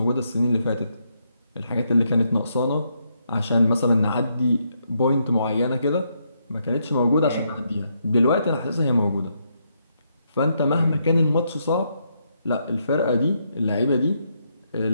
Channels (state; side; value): inverted; both; correlation -0.78